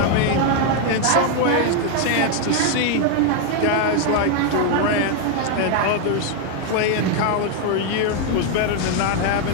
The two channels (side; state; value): both; different; correlation 0.01